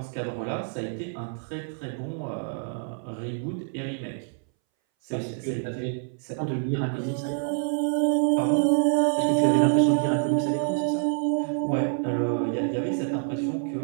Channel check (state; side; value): silent; left; 60 dB below the other